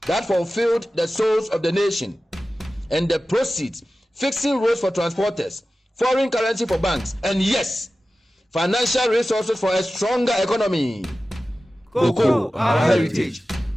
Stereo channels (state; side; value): normal; both; correlation 0.95